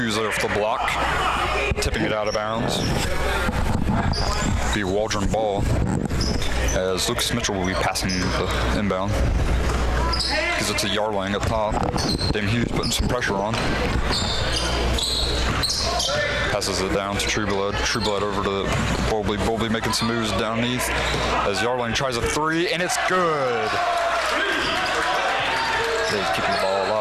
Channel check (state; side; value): identical; both; correlation 1.00